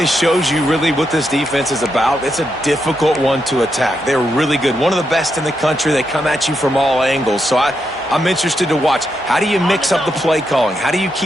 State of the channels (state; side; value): normal; both; correlation 0.82